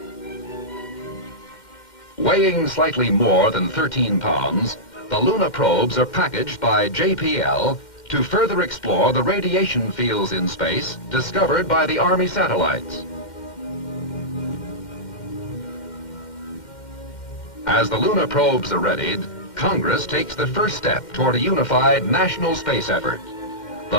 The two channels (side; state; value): right; late; 2.1 ms